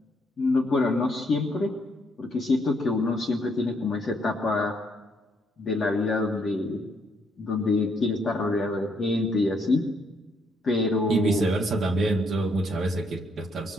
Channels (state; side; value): normal; both; correlation 0.72